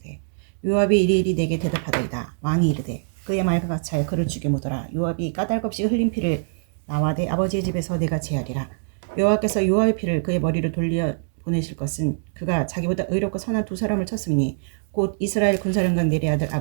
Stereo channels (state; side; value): silent; left; digital silence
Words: 요압이 이리이리 내게 대답하더이다. 왕이 이르되 그의 말과 같이 하여 그를 죽여 묻어라. 요압이 까닭없이 흘린 피를 나와 내 아버지의 집에서 내가 제하리라. 여호와께서 요압의 피를 그의 머리로 돌려 보내실 것은 그가 자기보다 의롭고 선한 두 사람을 쳤으니 곧 이스라엘 군사령관 넬의 아들